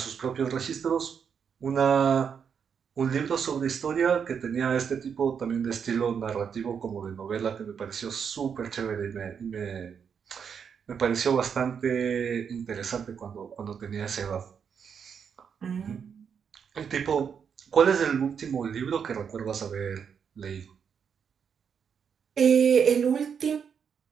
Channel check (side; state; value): left; quieter; 7.0 dB